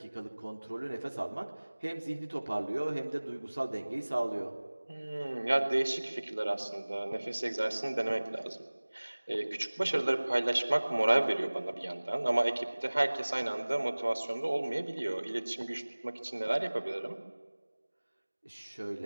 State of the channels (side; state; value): both; inverted; correlation -1.00